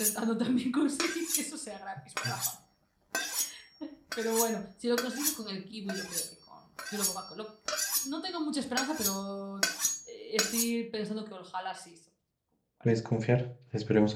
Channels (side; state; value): both; identical; correlation 1.00